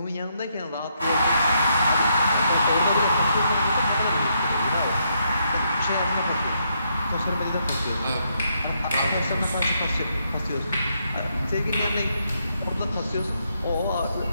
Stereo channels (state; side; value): inverted; both; correlation -0.77